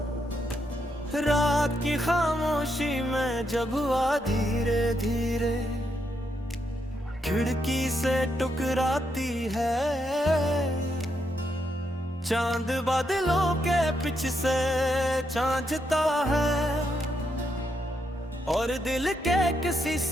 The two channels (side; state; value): both; normal; correlation 0.80